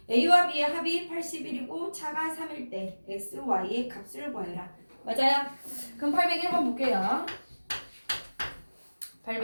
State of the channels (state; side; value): inverted; both; correlation -1.00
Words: a와 b의 합이 81이고 차가 3일 때 x, y의 값을 구하여라. 맞아요? 그럼 801번 볼게요.